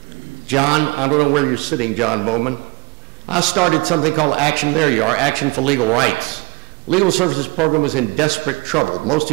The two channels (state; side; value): quieter; left; 25.6 dB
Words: John, I don't know where you're sitting, John Bowman. I started something called Action, there you are, Action for Legal Rights. Legal Services Program was in desperate trouble. Most